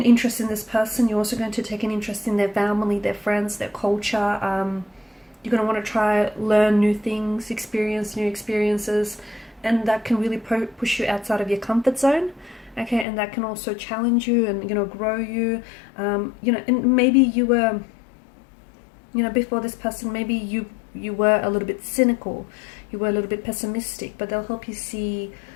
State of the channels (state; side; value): drops out; right; at 13.1 s